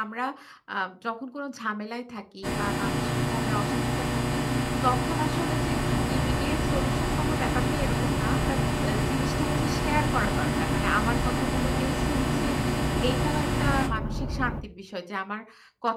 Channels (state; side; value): identical; both; correlation 1.00